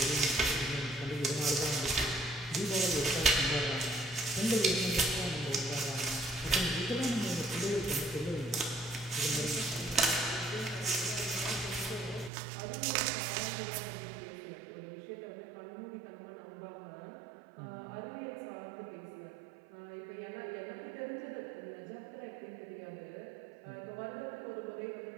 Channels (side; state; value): left; drops out; at 12.3 s